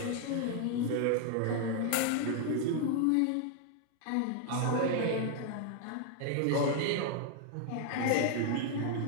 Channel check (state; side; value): different; both; correlation 0.00